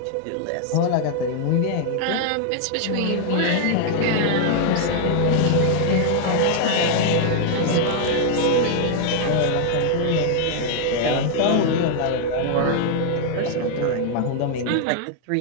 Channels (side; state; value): both; different; correlation 0.00